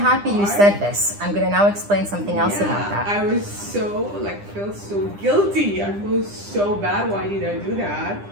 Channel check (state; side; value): late; left; 9.9 ms